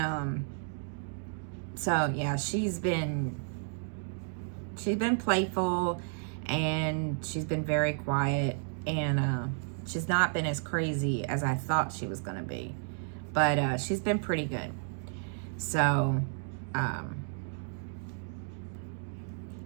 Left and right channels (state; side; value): silent; left; digital silence